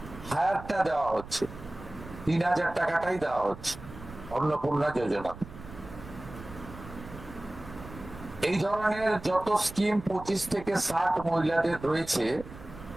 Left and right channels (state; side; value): noise; right; rumble, 15 dB below the sound